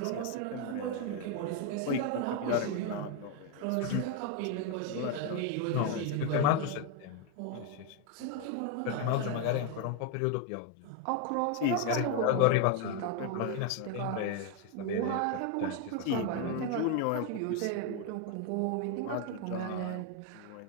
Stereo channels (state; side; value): different; both; correlation 0.01